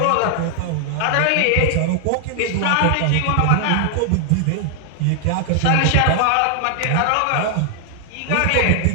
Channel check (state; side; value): different; both; correlation 0.00